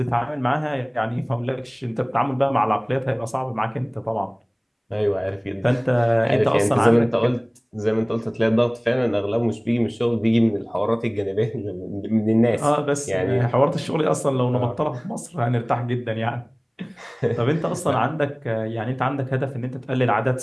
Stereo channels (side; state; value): both; identical; correlation 1.00